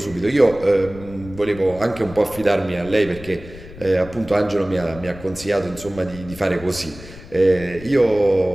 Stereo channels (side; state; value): left; noise; rumble, 16 dB below the sound